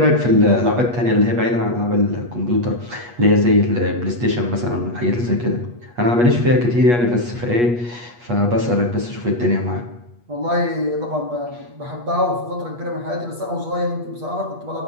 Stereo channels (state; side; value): late; left; 8.3 ms